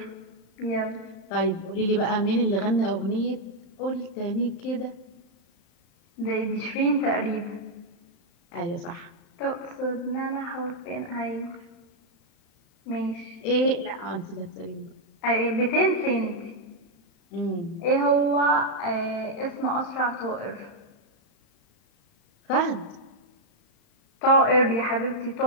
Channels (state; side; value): late; right; 35 ms